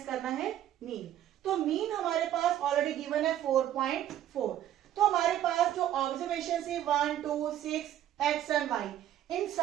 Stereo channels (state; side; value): quieter; left; 11.7 dB